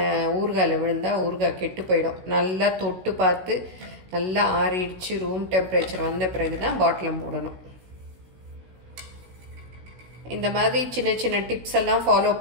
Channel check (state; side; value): late; left; 16 ms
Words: ஊறுகாயில் விழுந்தால் ஊறுகாய் கெட்டு போயிடும். நல்லா தொட்டு பார்த்து நல்லா ஆறிடுச்சு ரூம் டெம்பரேச்சர் வந்த பிறகு தான் பாட்டில் மூடணும். இந்த மாதிரி சின்ன சின்ன டிப்ஸ் எல்லாம் ஃபாலோ